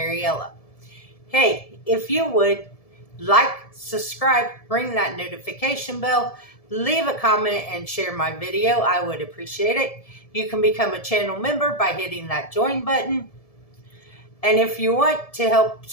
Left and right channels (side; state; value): right; late; 1.7 ms